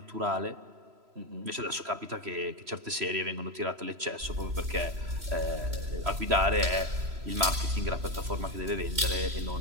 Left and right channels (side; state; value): left; late; 3.0 ms